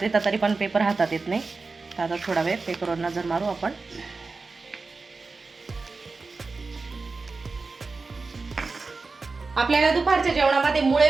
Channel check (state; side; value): quieter; left; 4.0 dB